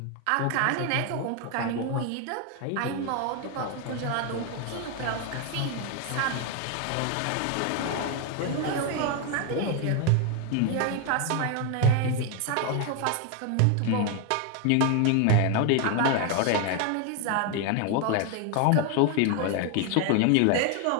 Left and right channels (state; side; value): different; both; correlation 0.01